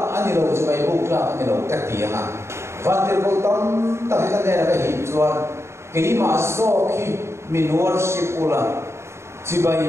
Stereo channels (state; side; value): late; left; 0.13 ms